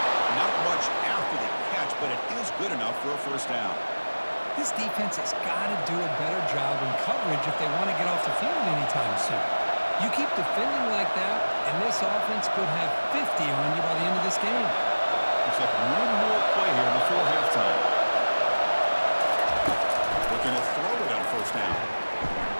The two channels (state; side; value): inverted; both; correlation -1.00